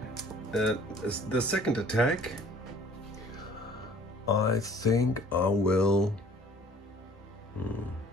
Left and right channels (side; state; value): both; normal; correlation 0.53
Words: the second attack, I think I will